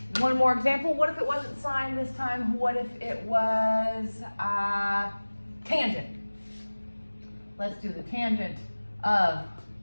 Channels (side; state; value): both; inverted; correlation -1.00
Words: One more example. What if it wasn't sine this time? What if it was tangent? Let's do the tangent of,